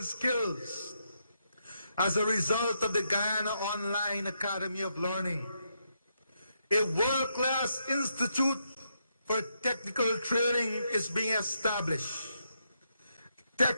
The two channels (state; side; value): inverted; both; correlation -0.80